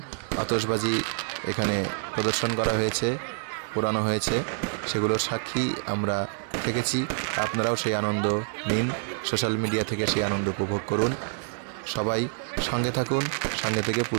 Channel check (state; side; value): silent; left; digital silence